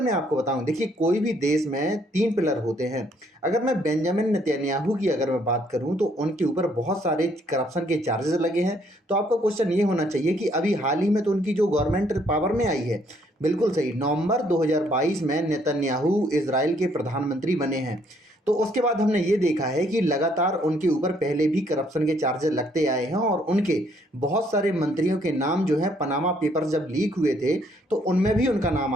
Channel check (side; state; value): both; normal; correlation 0.67